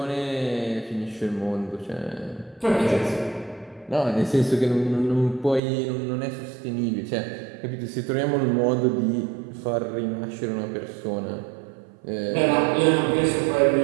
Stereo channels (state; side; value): drops out; left; at 5.6 s